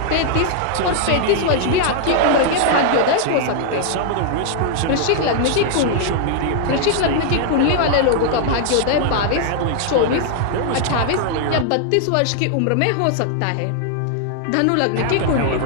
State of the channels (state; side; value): different; both; correlation -0.01